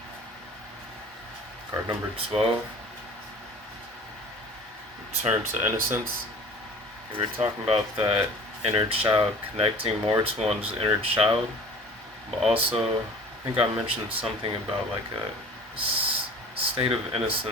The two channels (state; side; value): normal; both; correlation 0.45